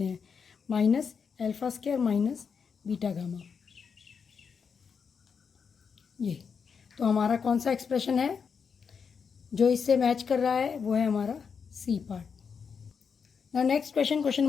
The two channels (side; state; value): right; quieter; 6.1 dB